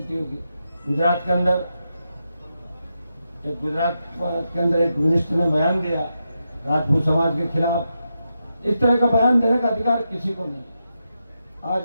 होगी। गुजरात के अंदर एक मिनिस्टर ने बयान दिया राजपूत समाज के खिलाफ, इस तरह का बयान देने का अधिकार किसी को नहीं।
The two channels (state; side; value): inverted; both; correlation -0.86